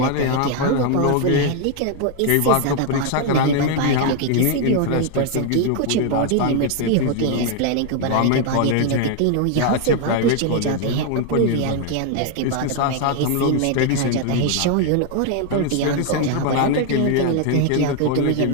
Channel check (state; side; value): different; both; correlation 0.01